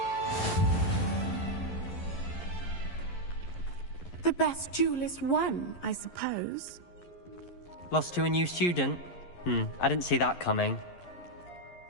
The best duelist won, I suppose. Lost to a new student? I didn't see that coming.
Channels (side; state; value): right; late; 11 ms